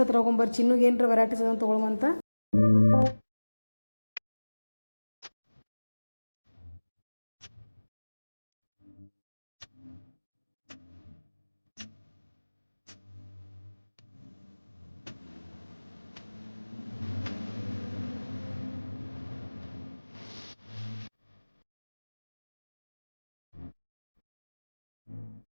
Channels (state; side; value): inverted; both; correlation -1.00